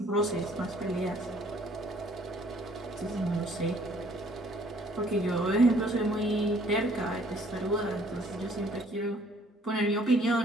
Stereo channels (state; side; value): normal; both; correlation 0.60